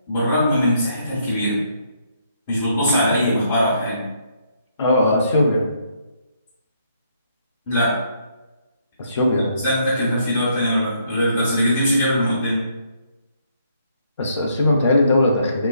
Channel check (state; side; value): inverted; both; correlation -0.71